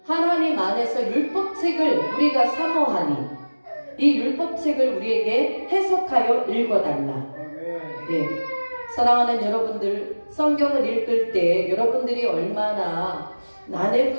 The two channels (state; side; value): inverted; both; correlation -1.00